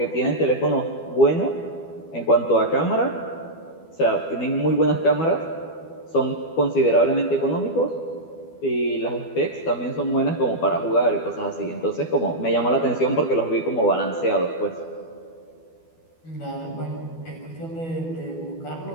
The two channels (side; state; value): right; late; 12 ms